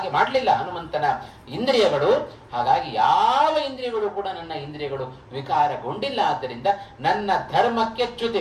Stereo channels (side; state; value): both; identical; correlation 1.00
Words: ಮಾಡಲಿಲ್ಲ ಹನುಮಂತನ ಇಂದ್ರಿಯಗಳು. ಹಾಗಾಗಿ ಯಾವ ಇಂದ್ರಿಯಗಳು ಕೂಡ ನನ್ನ ಇಂದ್ರಿಯಗಳು ವಿಕಾರಗೊಂಡಿಲ್ಲ. ಆದ್ದರಿಂದ ನನ್ನ ಧರ್ಮಕ್ಕೆ